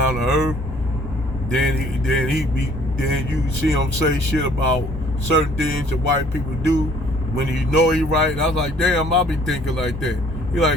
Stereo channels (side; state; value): both; normal; correlation 0.58